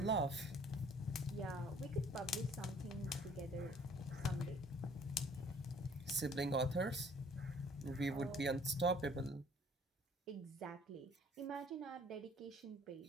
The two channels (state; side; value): normal; both; correlation 0.56